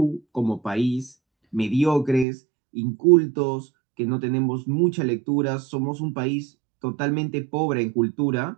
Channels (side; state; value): left; drops out; at 2.2 s